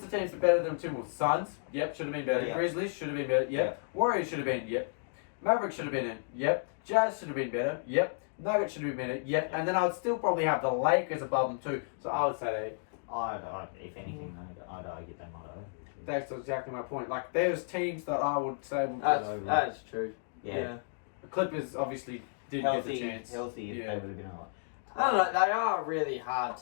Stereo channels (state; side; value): silent; right; digital silence